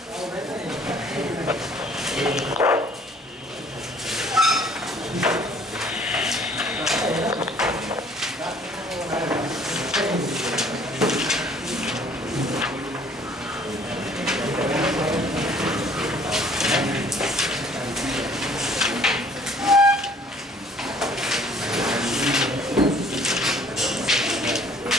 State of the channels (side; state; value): both; normal; correlation 0.56